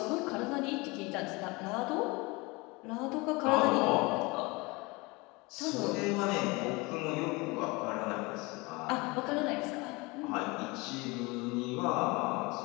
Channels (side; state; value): right; quieter; 25.2 dB